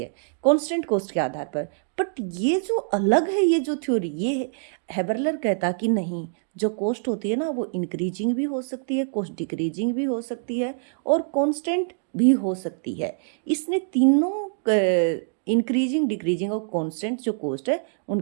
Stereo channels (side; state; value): left; silent; digital silence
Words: कांस्टेंट कॉस्ट के आधार पर। बट ये जो अलग है, ये जो थ्योरी, ये हेबरलर कहता कि नहीं, जो कॉस्ट होती है ना वो इंक्रीजिंग भी हो सकती है, कॉस्ट डिक्रीजिंग भी हो सकती है, और कांस्टेंट भी हो सकती है। इसने तीनों इंक्रीजिंग, डिक्रीजिंग और कांस्टेंट जो कॉस्ट है